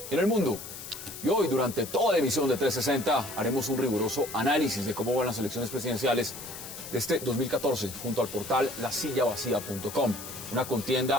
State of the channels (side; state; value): left; noise; hiss, 11 dB below the sound